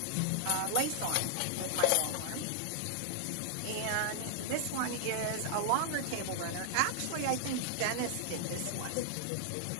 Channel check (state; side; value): different; both; correlation 0.00